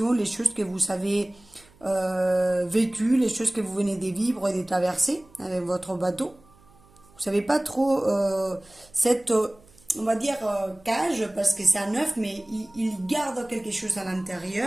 les choses que vous avez vécues, les choses que vous venez de vivre et de traverser avec votre bateau. Vous ne savez pas trop cette, on va dire, cage, parce que c'est un œuf, mais il garde quelque chose à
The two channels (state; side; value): noise; right; hum, 28 dB below the sound